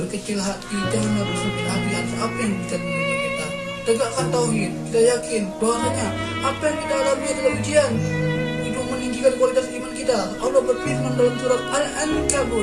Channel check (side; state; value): both; identical; correlation 1.00